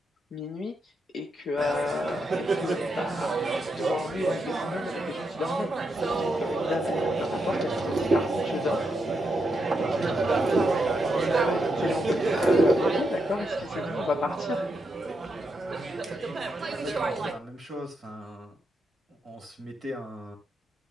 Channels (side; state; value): both; normal; correlation 0.82